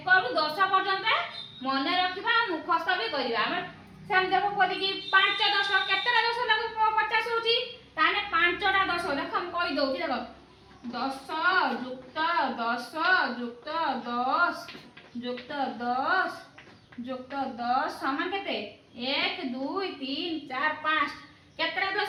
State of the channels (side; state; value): both; identical; correlation 1.00